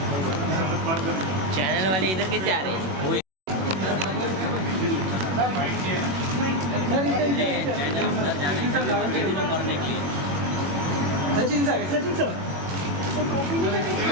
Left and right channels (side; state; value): left; late; 21 ms